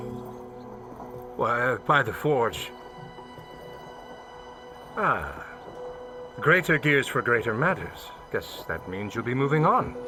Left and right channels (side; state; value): both; identical; correlation 1.00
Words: Why, by the forge. Ah. Greater gears for greater matters. Guess that means you'll be moving on.